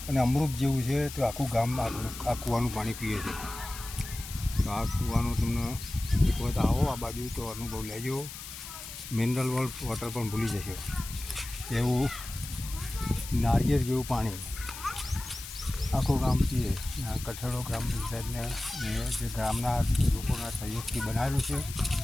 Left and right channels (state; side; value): noise; left; hiss, 11 dB below the sound